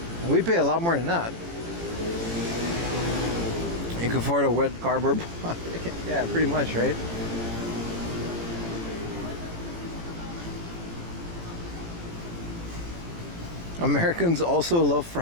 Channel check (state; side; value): late; left; 18 ms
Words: we pay a lot more than that. You can afford a wet cardboard box. Yeah, pretty much, right? Americans also love